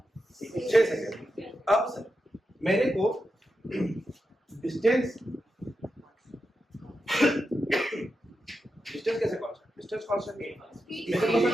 6 सेकेंड। अब सर मेरे को डिस्टेंस कैसे कांस्टेंट? डिस्टेंस कांस्टेंट मेरे को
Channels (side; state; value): both; normal; correlation 0.88